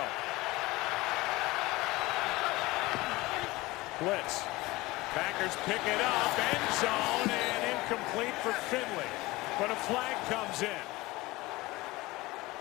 Blitz. Packers pick it up. End zone and incomplete for Finley. But a flag comes in.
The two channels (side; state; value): right; quieter; 20.7 dB